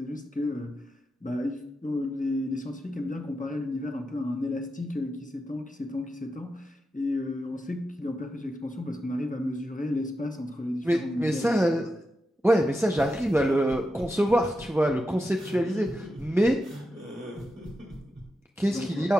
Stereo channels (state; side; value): normal; both; correlation 0.88